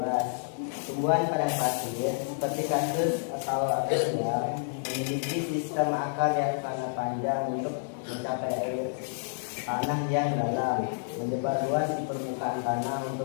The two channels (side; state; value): right; silent; digital silence